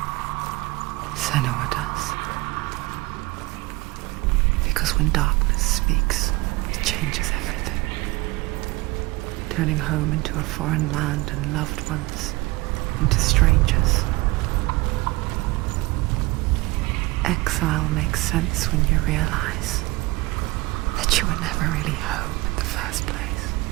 Senua does. Because when darkness speaks, it changes everything, turning home into a foreign land and loved ones into strangers. Exile makes sense when you realize that you were never really home in the first place.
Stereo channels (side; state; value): left; quieter; 21.6 dB